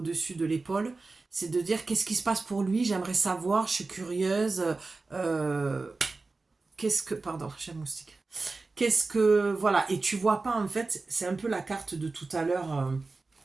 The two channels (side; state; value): left; quieter; 3.7 dB